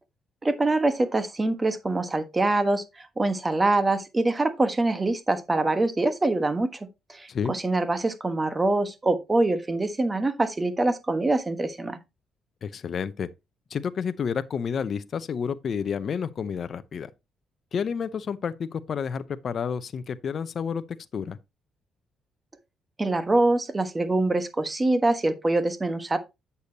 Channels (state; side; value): normal; both; correlation 0.91